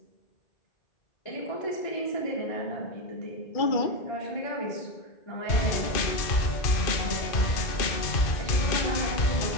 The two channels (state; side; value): late; right; 2.5 ms